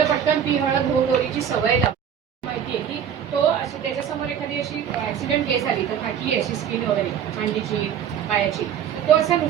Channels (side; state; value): left; quieter; 8.7 dB